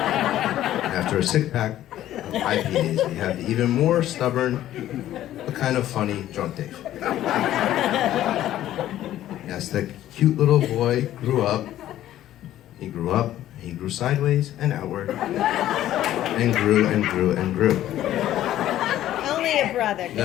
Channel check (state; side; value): quieter; right; 13.0 dB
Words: a six-pack of IPAs, we have the even more stubborn, but kind of funny drunk Dave. Yes, that cute little boy grew up. He grew up, he grew sideways and outward, and grew and grew and grew. Only a brother.